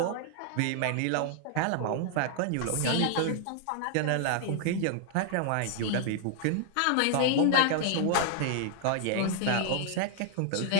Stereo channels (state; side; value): different; both; correlation -0.01